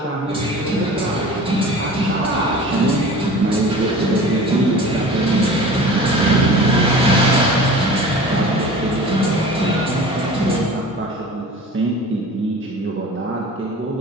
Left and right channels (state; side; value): normal; both; correlation 0.40